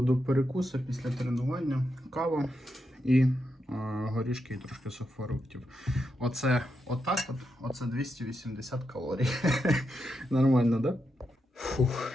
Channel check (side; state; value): both; normal; correlation 0.85